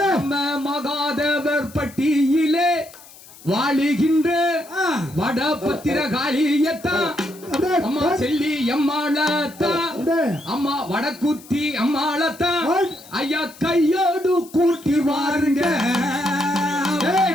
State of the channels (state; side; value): noise; left; hiss, 21 dB below the sound